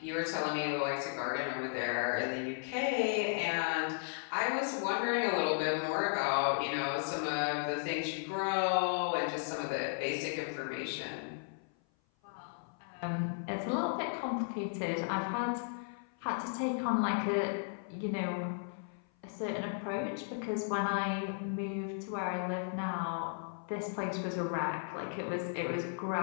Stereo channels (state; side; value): silent; right; 54 dB below the other